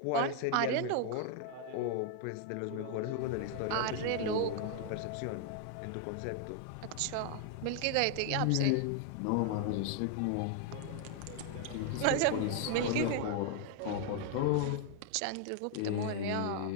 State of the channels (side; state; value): both; different; correlation 0.00